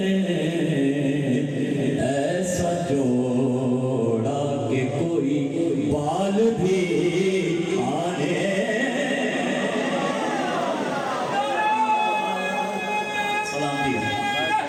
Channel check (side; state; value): both; identical; correlation 1.00